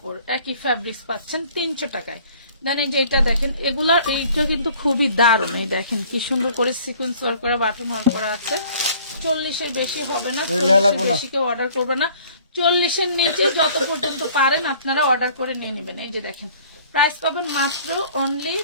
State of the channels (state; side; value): inverted; both; correlation -0.53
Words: একই ফ্যাব্রিক্স পাচ্ছেন 300 টাকায়। দেন এই যে এটা দেখেন, এগুলা এইটা কিন্তু খুবই দারুণ। এই দেখেন কি সুন্দর করে সিকোয়েন্স ওয়ার্ক করে বাটন ওয়ার্ক করা আছে। 40-এর বেশি হবে না, 40-এর বেশি কেউ অর্ডার করবে না। 40-এর নিচে যত পর্যন্ত পারেন আপনারা অর্ডার করে নিয়ে নেবেন। এই যে দেখেন, প্রাইস পাবেন মাত্র অনলি